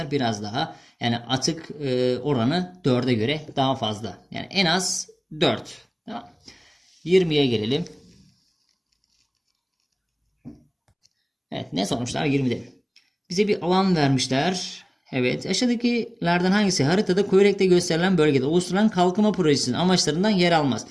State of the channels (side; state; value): both; identical; correlation 1.00